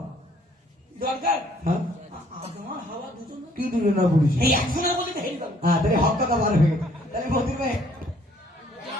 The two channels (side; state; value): both; normal; correlation 0.62